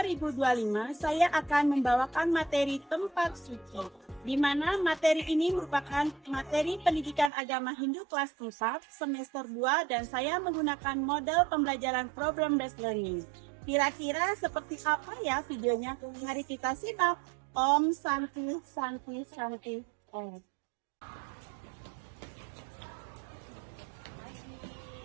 saya akan membawakan materi tempat suci. Di mana materi ini merupakan materi pendidikan agama Hindu kelas 4 semester 2 dan saya menggunakan model pembelajaran problem based learning. Kira-kira seperti apa ya videonya? Mari kita simak. Om Santi Santi Santi Om.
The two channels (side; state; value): left; drops out; at 7.3 s